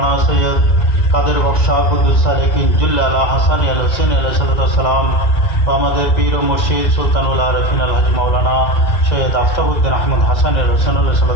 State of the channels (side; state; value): right; late; 2.1 ms